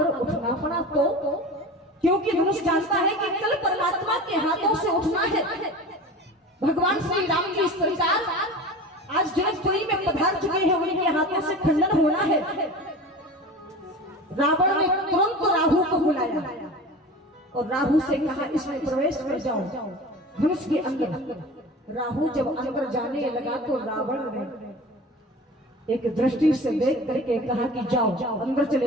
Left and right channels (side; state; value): both; normal; correlation 0.35